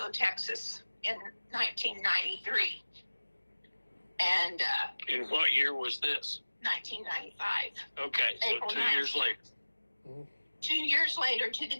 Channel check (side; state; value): both; inverted; correlation -1.00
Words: Texas in 1993. And in what year was this? 1995. Okay, so April 2 9th. years later. 2 years later to the